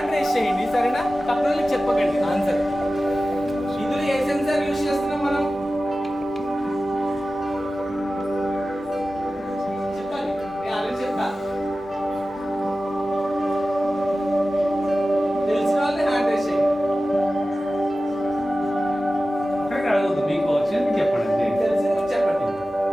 రేస్ చేయండి సరేనా? తక్కువ చెప్పకండి ఆన్సర్. ఇందులో ఏ సెన్సార్ యూజ్ చేస్తున్నాం మనం? చెప్పాలి, నేను ఆల్రెడీ చెప్పా. తెలిసిన వాళ్ళే హ్యాండ్ రేస్ చేయండి. అక్కడికి అడగద్దు, మీకు వచ్చింది చెప్పండి. తెలిసింది కూడా చెప్పండి.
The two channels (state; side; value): normal; both; correlation 0.95